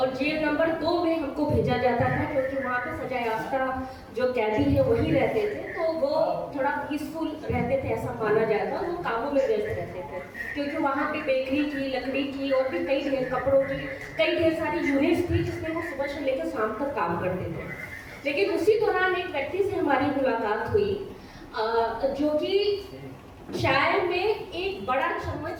जेल नंबर 2 में हमको भेजा जाता था क्योंकि वहाँ पे सजा याफ्ता जो कैदी है वही रहते थे, तो वो थोड़ा पीसफुल रहते थे ऐसा माना जाता, वो कामों में व्यस्त रहते थे क्योंकि वहाँ पे बेकरी की, लकड़ी की और भी कई ढेर कपड़ों की कई ढेर सारी यूनिट्स थी जिसमें वो सुबह से लेकर शाम तक काम करते थे। लेकिन उसी दौरान एक व्यक्ति से हमारी मुलाकात हुई जो कि चाय में एक बड़ा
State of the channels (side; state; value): both; identical; correlation 1.00